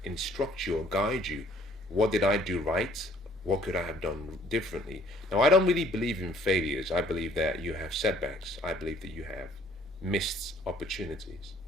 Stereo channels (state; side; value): noise; right; hum, 26 dB below the sound